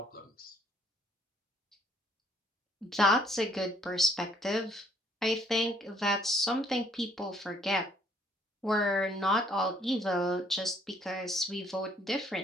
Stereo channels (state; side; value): normal; both; correlation 0.65